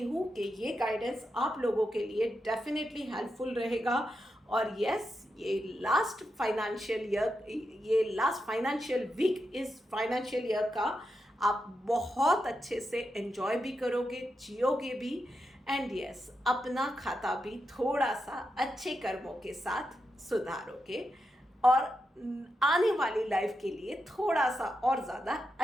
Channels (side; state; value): both; normal; correlation 0.86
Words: हूँ कि ये गाइडेंस आप लोगों के लिए डेफिनेटली हेल्पफुल रहेगा। और यस, ये लास्ट फाइनेंशियल वीक, इस फाइनेंशियल ईयर का आप बहुत अच्छे से एंजॉय भी करोगे, जियोगे भी, एंड यस, अपना खाता भी थोड़ा सा अच्छे कर्मों के साथ सुधारोगे, और आने वाली लाइफ के लिए थोड़ा सा और ज़्यादा